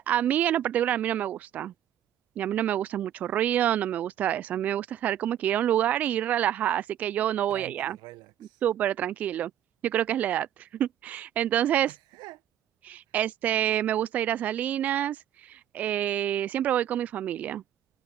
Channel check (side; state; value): left; quieter; 11.0 dB